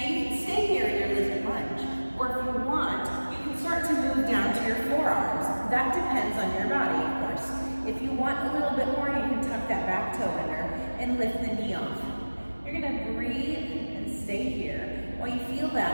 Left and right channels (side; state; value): both; inverted; correlation -1.00